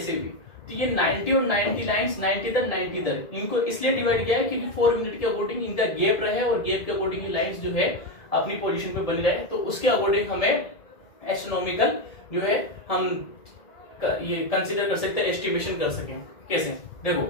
हुई? तो ये 90 और 90 लाइंस 90 इधर 90 इधर, इनको इसलिए डिवाइड किया है क्योंकि 4 मिनट के अकॉर्डिंग इनका गैप रहे और गैप के अकॉर्डिंग लाइंस जो है अपनी पोजीशन पे बन रहे, तो उसके अकॉर्डिंग हमें एस्ट्रोनॉमिकल जो है हम ये कंसीडर कर सकते हैं, एस्टिमेशन कर सकें। कैसे देखो,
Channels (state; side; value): late; right; 1.7 ms